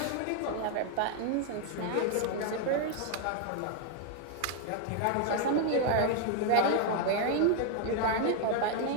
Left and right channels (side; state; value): both; different; correlation 0.00